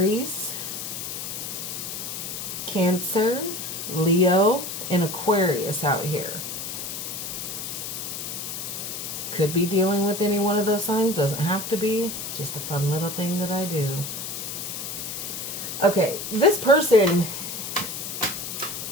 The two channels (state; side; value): noise; left; hiss, 6 dB below the sound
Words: Cancer, Leo, and Aquarius out here. Could be dealing with any one of those signs. Doesn't have to be. Just a fun little thing that I do. Okay, this person